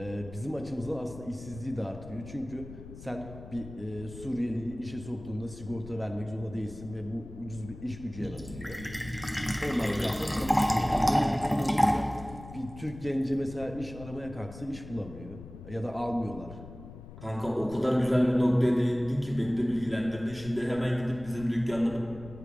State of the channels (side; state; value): left; noise; rumble, 14 dB below the sound